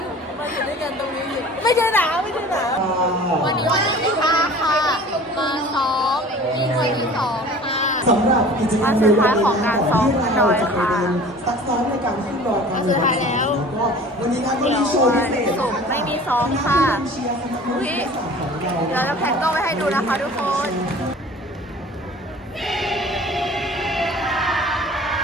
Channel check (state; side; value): normal; both; correlation 0.44